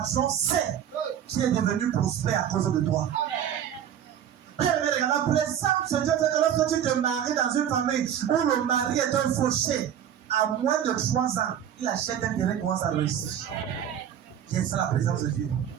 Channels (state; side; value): quieter; left; 9.7 dB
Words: sait qui est devenu prospère à cause de toi. Bien, la présence de Dieu fait que lorsque tu te maries dans une famille où le mari est un fauché, à moins de 3 ans, il achète un terrain et commence à réussir. Bien, c'est la présence de Dieu.